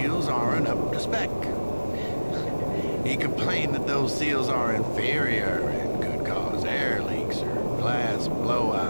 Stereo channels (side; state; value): both; inverted; correlation -1.00